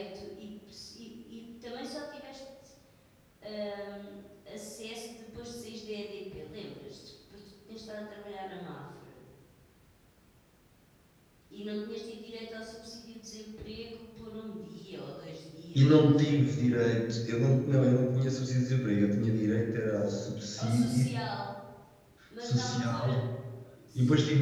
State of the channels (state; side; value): identical; both; correlation 1.00